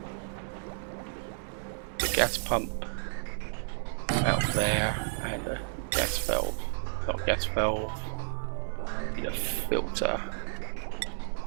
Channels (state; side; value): silent; left; 55 dB below the other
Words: gas pump out there and a gas valve, not gas valve, need a filter,